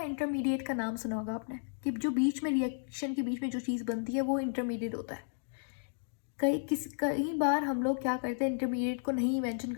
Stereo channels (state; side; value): silent; right; digital silence